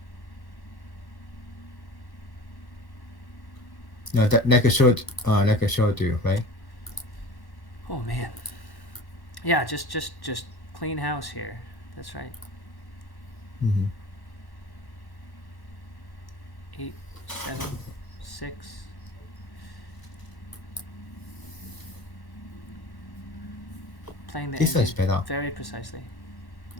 No, that like I showed you, right? Oh man. Yeah, just clean house here. That's right. Mm-hmm. 8, 7, 6. Playing the This one's endgame better. very precisely.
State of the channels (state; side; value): late; right; 1.1 ms